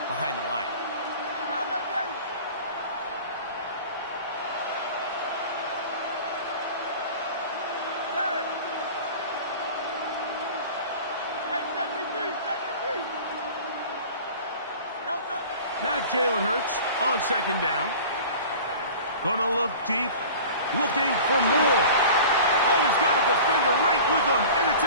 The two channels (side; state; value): both; inverted; correlation -0.40